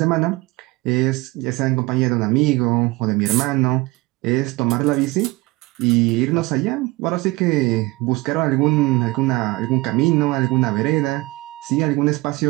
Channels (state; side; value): quieter; left; 21.9 dB